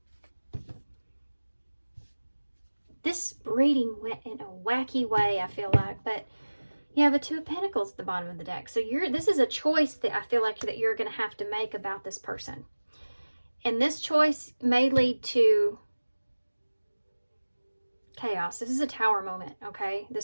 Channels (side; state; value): both; inverted; correlation -1.00